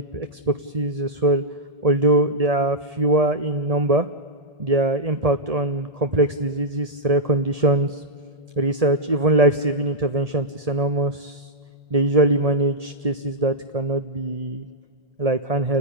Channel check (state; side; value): late; left; 1.8 ms